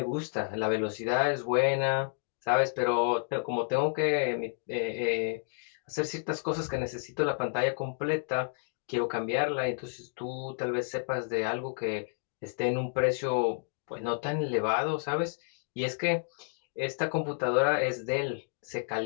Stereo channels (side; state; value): right; silent; digital silence